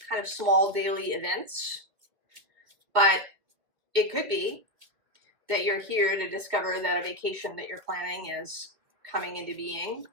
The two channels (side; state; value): left; late; 2.2 ms